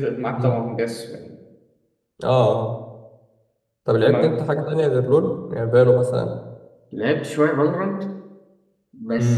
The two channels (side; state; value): both; identical; correlation 1.00